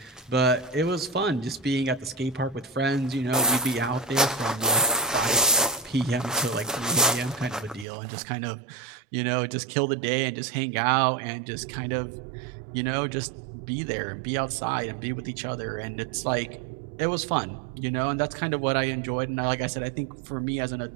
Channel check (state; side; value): drops out; left; at 7.9 s